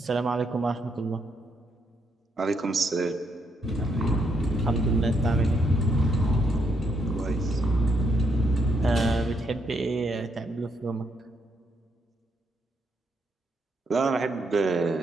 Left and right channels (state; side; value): normal; both; correlation 0.76